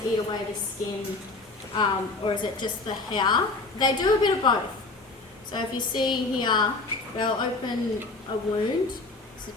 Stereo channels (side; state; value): right; quieter; 3.4 dB